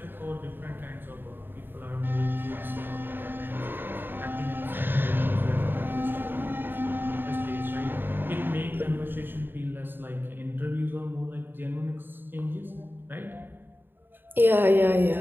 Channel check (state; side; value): late; left; 0.096 ms